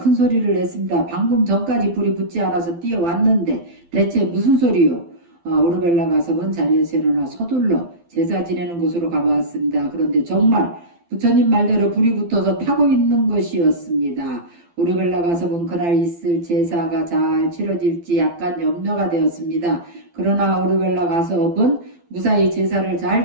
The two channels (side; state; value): left; late; 12 ms